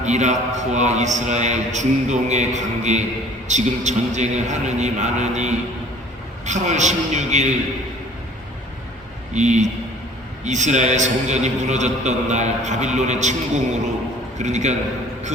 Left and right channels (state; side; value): normal; both; correlation 0.51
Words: 이라크와 이스라엘, 중동의 관계, 지금 전쟁을 하느니 마느니 8월 16일 이 이스라엘 성전이 무너졌던 날 바빌론의 침공으로 그러니까 그